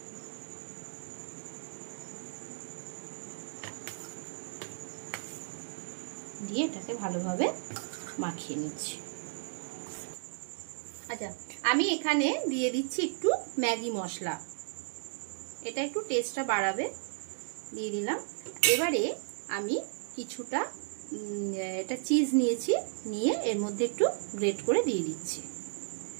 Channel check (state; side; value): silent; left; digital silence